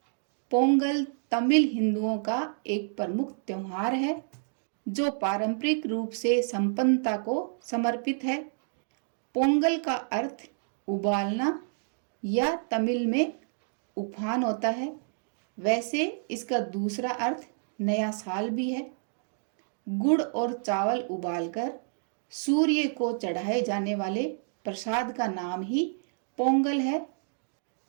पोंगल तमिल हिंदुओं का एक प्रमुख त्योहार है जो पारंपरिक रूप से संपन्नता को समर्पित है। पोंगल का अर्थ उबालना या तमिल में उफान होता है। वैसे इसका दूसरा अर्थ नया साल भी है। गुड़ और चावल उबालकर सूर्य को चढ़ाए जाने वाले प्रसाद का नाम ही पोंगल है।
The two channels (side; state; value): left; silent; digital silence